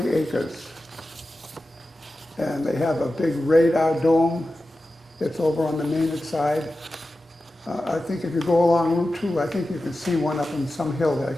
acres. And they have a big radar dome. It's over on the Maynard side. I think if you go along Route 2, I think you can see one up in some hill there. I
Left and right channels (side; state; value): both; normal; correlation 0.93